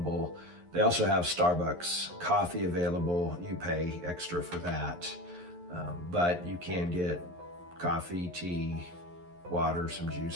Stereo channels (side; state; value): left; late; 11 ms